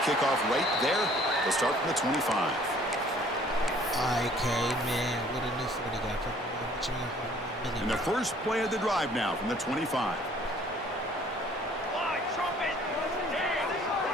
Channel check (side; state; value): both; normal; correlation 0.56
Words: right there. They'll start from the 25. IK, man, what a new 40 got. And the first play of the drive now from the 25.